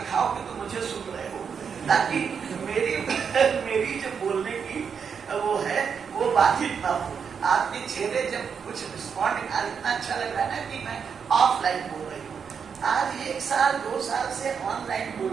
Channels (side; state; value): left; quieter; 6.6 dB